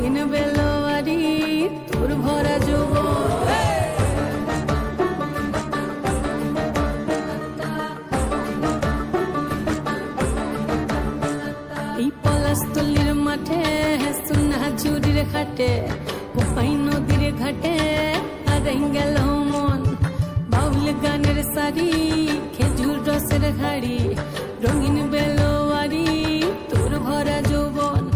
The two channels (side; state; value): both; identical; correlation 1.00